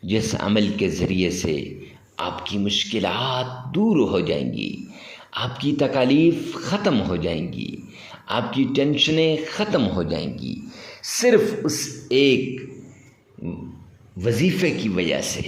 جس عمل کے ذریعے سے آپ کی مشکلات دور ہو جائیں گی، آپ کی تکالیف ختم ہو جائیں گی، آپ کی ٹینشنیں ختم ہو جائیں گی، صرف اس ایک وظیفے کی وجہ سے،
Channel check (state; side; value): identical; both; correlation 1.00